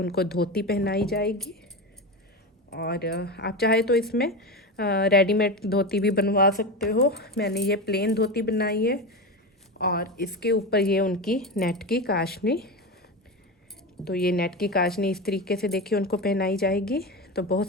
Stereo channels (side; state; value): both; normal; correlation 0.21